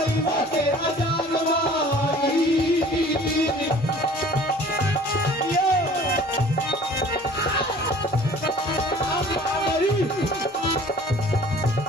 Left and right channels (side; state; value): both; normal; correlation 0.49